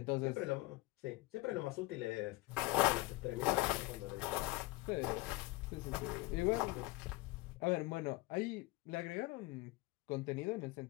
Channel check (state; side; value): quieter; right; 20.6 dB